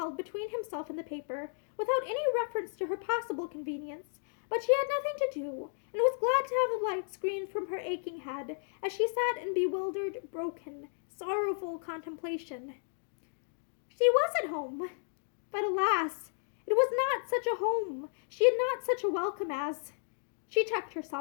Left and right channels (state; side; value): silent; right; digital silence